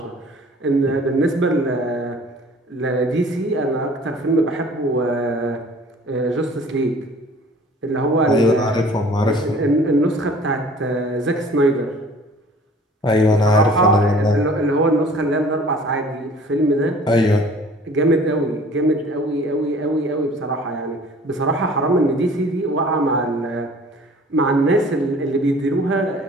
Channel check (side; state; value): both; normal; correlation 0.49